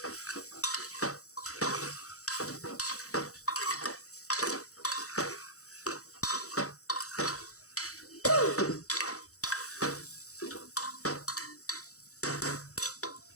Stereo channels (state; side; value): late; right; 0.65 ms